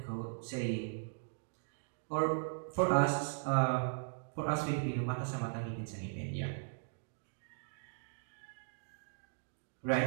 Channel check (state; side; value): silent; left; digital silence